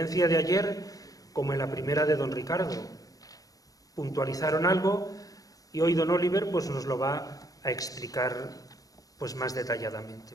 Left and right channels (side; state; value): right; late; 0.17 ms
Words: de ayer como en la primera de don Ricardo. Puntualizaron algo y hoy don Oliver pues nos lo va a explicar pues más